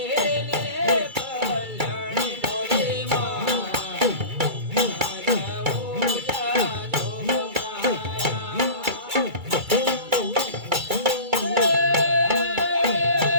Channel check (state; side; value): late; left; 2.3 ms